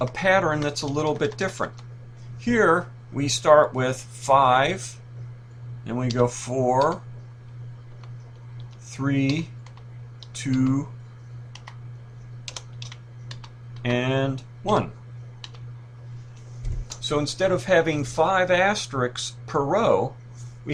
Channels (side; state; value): both; identical; correlation 1.00